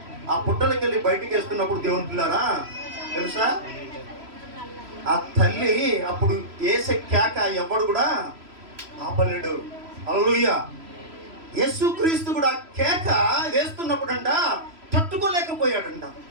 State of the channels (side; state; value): left; late; 3.0 ms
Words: ఆ పుట్టలకి వెళ్ళి బయటికి వేస్తున్నప్పుడు దేవుని పిల్లారా తెలుసా, ఆ తల్లి అప్పుడు వేసే కేక ఎవడు కూడా ఆపలేడు. హల్లెలూయా. యేసుక్రీస్తు కూడా కేక వేస్తున్నప్పుడంట తట్టుకోలేకపోయాడంట.